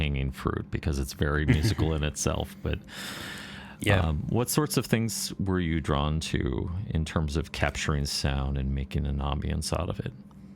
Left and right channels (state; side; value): identical; both; correlation 1.00